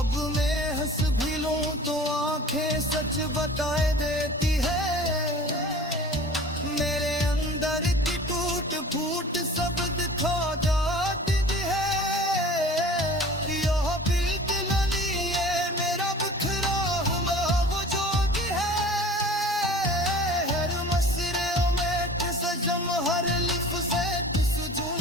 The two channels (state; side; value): normal; both; correlation 0.43